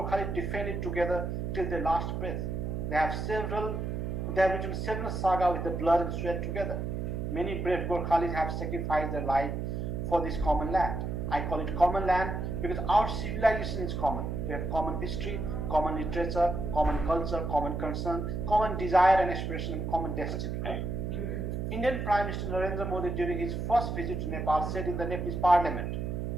defend it together till their last breath. They have written several sagas with the blood and sweat together. Many brave Gorkhalis have sacrificed their life for this common land. I call it common land because our civilization is common. We have common history, common literature, common culture, common concern, common desire and aspiration, and common destiny. Indian Prime Minister Narendra Modi, during his first visit to Nepal, said in the Nepalese parliament,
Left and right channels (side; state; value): right; noise; hum, 3 dB below the sound